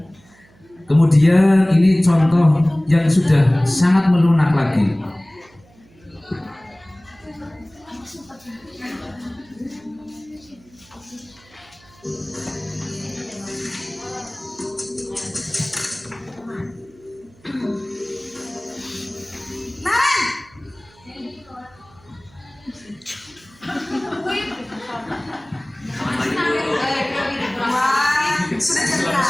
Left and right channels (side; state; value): right; noise; hum, 28 dB below the sound